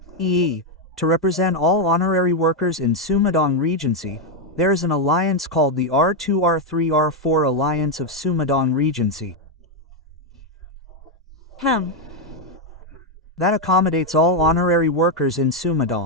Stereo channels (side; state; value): both; normal; correlation 0.03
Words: EE, to represent all honorary workers in Sumedang Regency. There is an alliance called the R2 R3 R4 Alliance of Sumedang Regency. That accommodates all honorary workers in